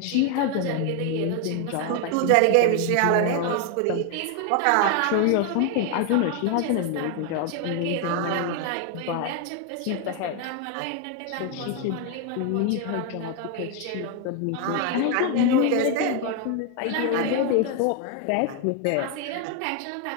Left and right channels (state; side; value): different; both; correlation 0.01